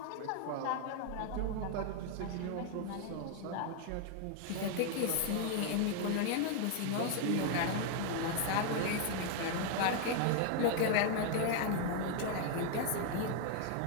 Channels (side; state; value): both; different; correlation 0.00